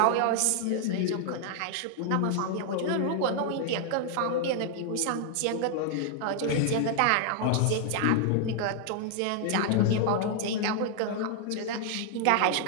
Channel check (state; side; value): different; both; correlation 0.00